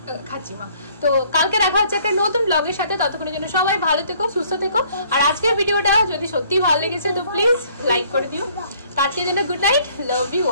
খাচ্ছি মা। তো কালকে দেখা হচ্ছে একটা নতুন ব্লগের সাথে, ততক্ষণের জন্য সবাই ভালো থেকো, সুস্থ থেকো। আর আজকের ভিডিওটা যদি সত্যি ভালো লেগেছে তো প্লিজ লাইক করে দিও। তো আজকের জন্য good night, love you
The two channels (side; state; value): both; inverted; correlation -0.60